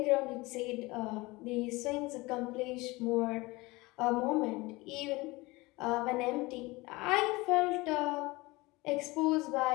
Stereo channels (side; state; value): right; quieter; 22.4 dB